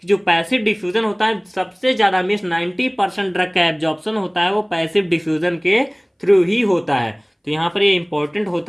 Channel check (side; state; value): both; identical; correlation 1.00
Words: कि जो पैसिव डिफ्यूजन होता है सबसे ज़्यादा मीन्स 90% ड्रग का एब्जॉर्प्शन होता है वो पैसिव डिफ्यूजन के थ्रू ही होता है। तो यहाँ पर ये इंपॉर्टेंट